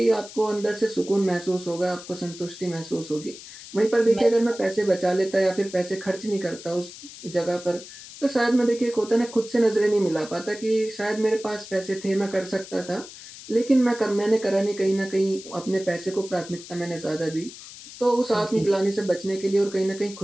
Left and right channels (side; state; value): left; noise; hiss, 15 dB below the sound